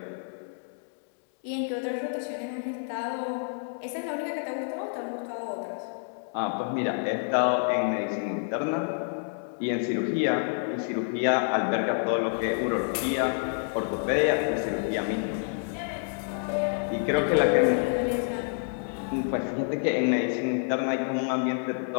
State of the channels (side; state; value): right; silent; 59 dB below the other